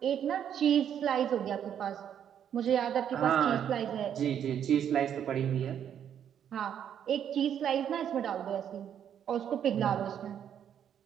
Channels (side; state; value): left; quieter; 9.2 dB